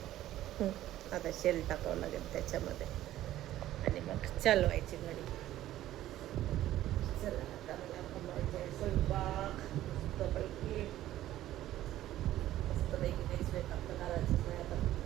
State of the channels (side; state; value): left; quieter; 13.8 dB